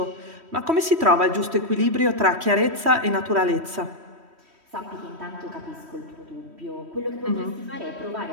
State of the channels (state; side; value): late; left; 3.1 ms